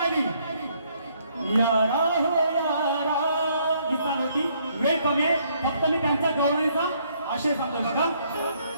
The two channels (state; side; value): inverted; both; correlation -0.68